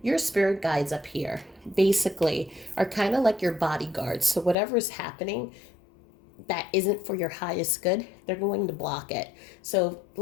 your spirit guides up here basically are kind of like your bodyguards. So whatever is happening that isn't for your highest good, they're going to block it. So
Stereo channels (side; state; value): right; drops out; at 4.5 s